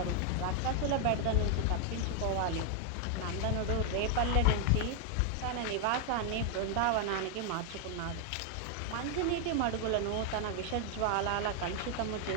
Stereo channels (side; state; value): both; different; correlation 0.00